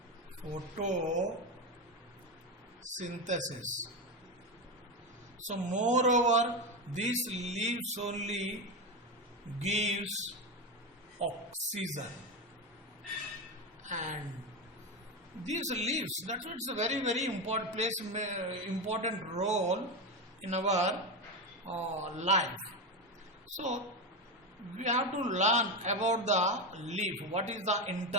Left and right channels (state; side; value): normal; both; correlation 0.15